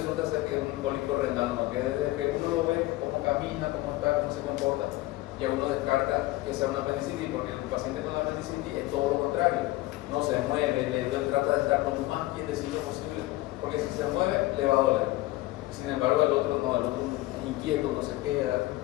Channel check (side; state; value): right; quieter; 18.4 dB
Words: ser que es un cólico renal, ¿no? Que desde que uno lo ve, cómo camina, cómo está, cómo se comporta, ya uno descarta que sea una apendicitis, porque el paciente con la apendicitis es todo lo contrario. No se mueve, le duele, trata de estar lo más quietecito posible, porque si se mueve, le va a doler. Sin embargo, el otro no, el otro inquieto, no se queda.